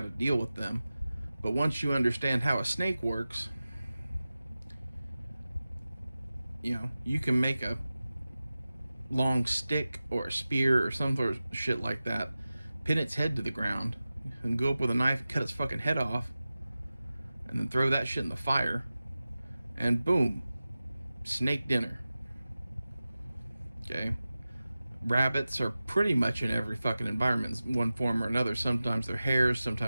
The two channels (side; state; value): both; inverted; correlation -0.95